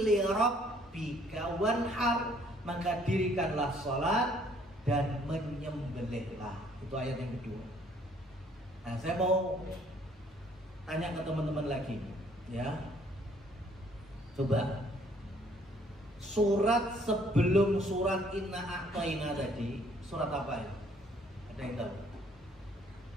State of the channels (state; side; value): normal; both; correlation 0.62